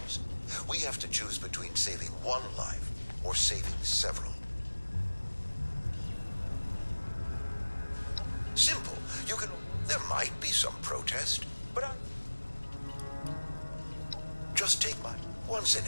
we have to choose between saving one life or saving several. Simple. You can... There might be some protest, but just take my once in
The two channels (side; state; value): both; inverted; correlation -1.00